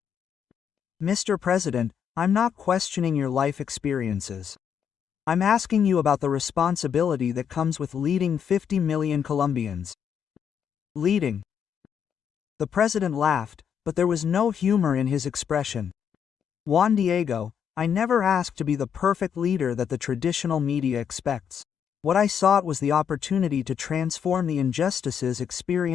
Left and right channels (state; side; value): quieter; right; 7.9 dB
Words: Mr. President, I'm not questioning your life experiences. I'm asking you about the responsibility that comes with leading 50 million Colombians. Leading. The president laughed, but there was no humor in his expression. Juan Diego, I never asked to be the perfect leader that the traditional media expects. What I sought was the opportunity to transform the injustices